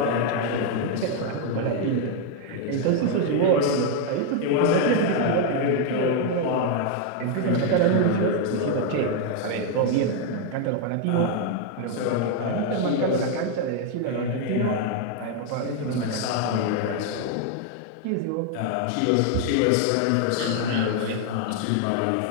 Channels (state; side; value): different; both; correlation 0.01